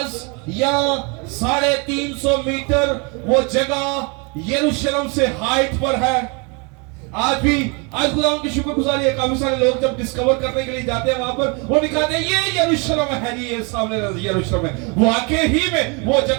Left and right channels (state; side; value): quieter; left; 32.2 dB